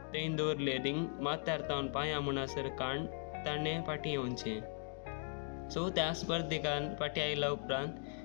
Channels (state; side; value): silent; right; 52 dB below the other